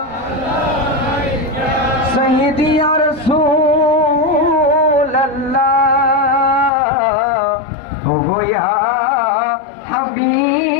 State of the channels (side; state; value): right; drops out; at 6.7 s